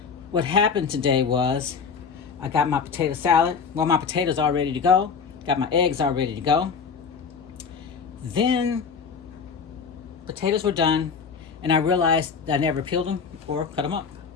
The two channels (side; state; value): right; quieter; 5.8 dB